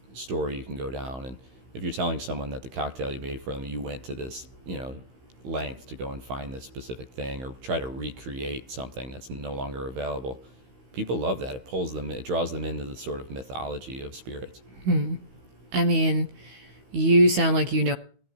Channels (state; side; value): late; left; 16 ms